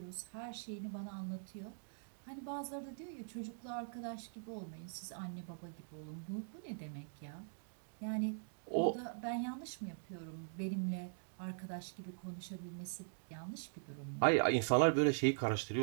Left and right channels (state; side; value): silent; left; digital silence